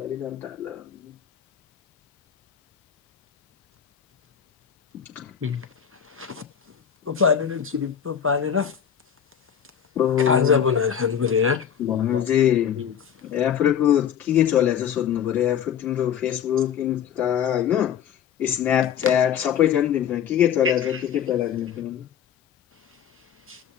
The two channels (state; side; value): quieter; right; 8.7 dB